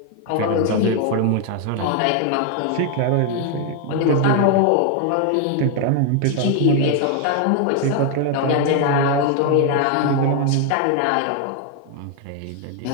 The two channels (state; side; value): different; both; correlation 0.01